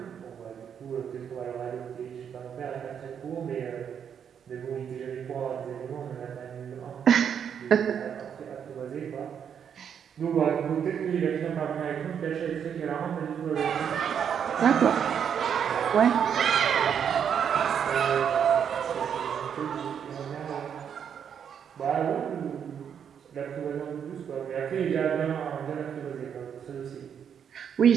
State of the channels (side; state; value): left; quieter; 8.0 dB